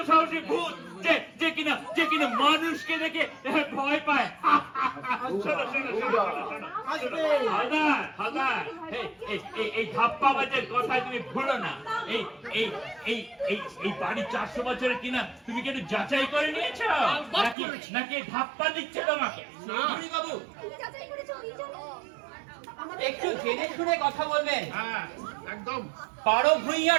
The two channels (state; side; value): drops out; left; at 17.6 s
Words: সাহসী ভূত যে কিনা মানুষকে দেখে ভয় পায়। শোনো, হালদার, এই ধাপ্পাবাজের কথা তুমি ভুলো না। এই বাড়ি 400 বছরের কিনা তুমি কি একটু যাচাই করে নিয়েছো নাকি ধাপ্পা দিচ্ছে তোমাকে? চৌধুরী বাবু, তুমি যাচাই করেছো এই জন্য? একটু জেনে শুনে কথা বলবেন। হ্যাঁ, একদম। বারো